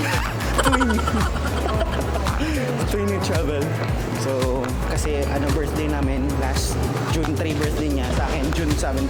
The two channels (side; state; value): both; identical; correlation 1.00